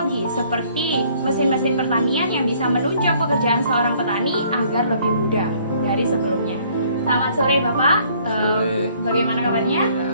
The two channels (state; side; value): inverted; both; correlation -0.61